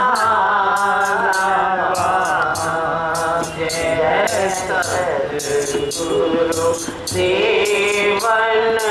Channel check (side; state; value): both; identical; correlation 1.00